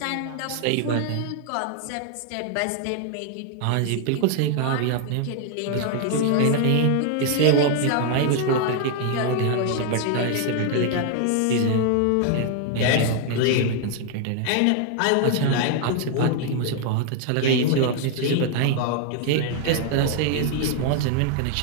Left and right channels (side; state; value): both; different; correlation 0.00